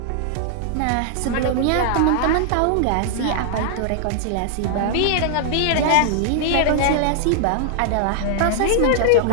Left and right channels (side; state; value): both; different; correlation -0.01